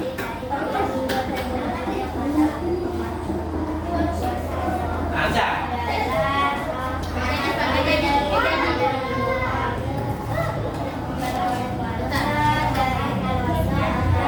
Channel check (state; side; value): identical; both; correlation 1.00